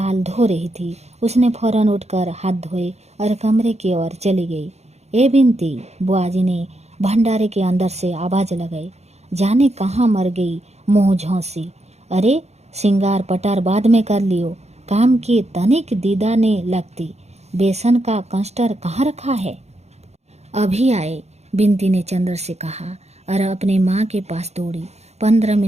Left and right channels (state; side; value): late; left; 0.31 ms